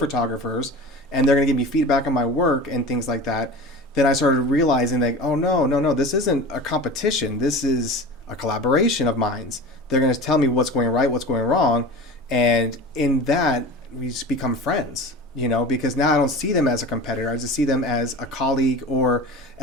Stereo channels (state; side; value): normal; both; correlation 0.34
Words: and they're going to give me feedback on my work and things like that. Then I started realizing that, oh, no, this isn't a competition. This is a collaboration of minds. They're going to tell me what's going right, what's going wrong. And in that, we just become friends, because now I don't see them as a competitor. I just see them as a colleague or